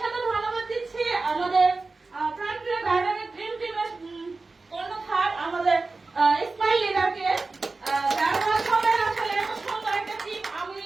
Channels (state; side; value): quieter; left; 3.7 dB